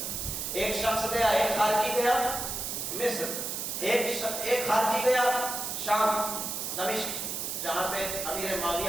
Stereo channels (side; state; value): right; noise; hiss, 3 dB below the sound